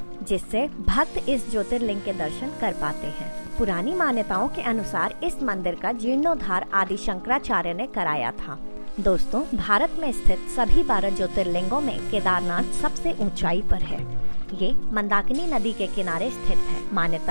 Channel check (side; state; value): both; inverted; correlation -1.00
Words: जिससे भक्त इस ज्योतिर्लिंग के दर्शन कर पाते हैं। पुरानी मान्यताओं के अनुसार इस मंदिर का जीर्णोद्धार आदि शंकराचार्य ने कराया था। दोस्तों, भारत में स्थित सभी 12 ज्योतिर्लिंगों में केदारनाथ सबसे ऊंचाई पर है। ये मंदाकिनी नदी के किनारे स्थित है।